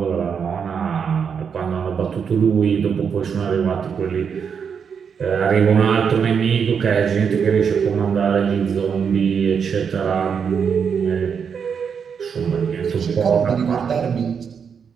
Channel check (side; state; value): left; quieter; 6.7 dB